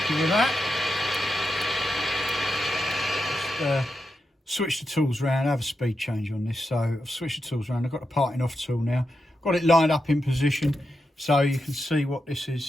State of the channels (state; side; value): normal; both; correlation 0.87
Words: with that. Just switch the tools around, have a speed change on this. So I've switched the tools around. I've got the parting off tool now. Got it lined up in position so you can see what this